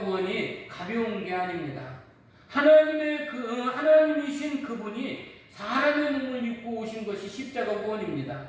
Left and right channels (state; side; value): identical; both; correlation 1.00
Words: 가벼운 게 아닙니다. 하나님이신 그분이 사람의 몸을 입고 오신 것이 십자가